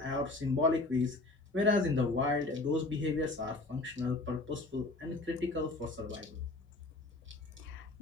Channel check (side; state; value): right; quieter; 3.1 dB